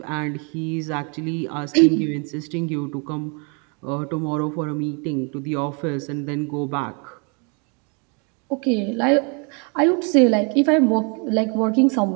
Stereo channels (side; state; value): left; quieter; 35.0 dB